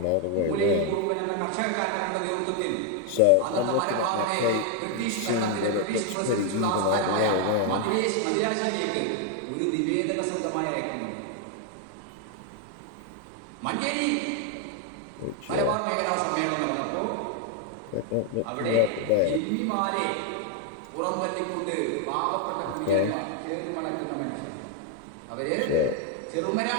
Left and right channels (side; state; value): both; different; correlation 0.01